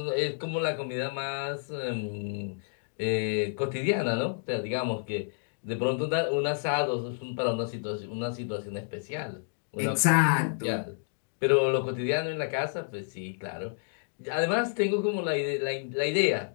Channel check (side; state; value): right; silent; digital silence